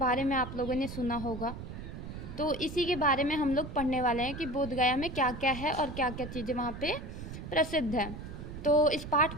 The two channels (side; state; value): right; noise; rumble, 9 dB below the sound